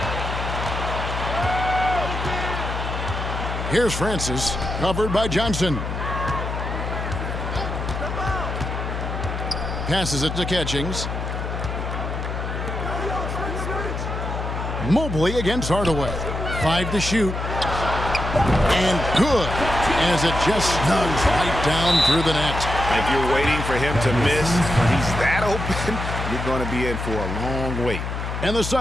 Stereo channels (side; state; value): left; noise; hum, 4 dB below the sound